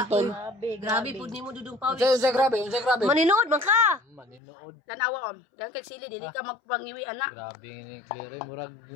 Grabe po ni mo dudong pawis. Unsay grabe. Maninood man ka. Maninood. Tanawa on. Dan kag sili dili ka magpangiwi ana. Grabe ni Claire, murag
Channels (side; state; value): right; drops out; at 4.4 s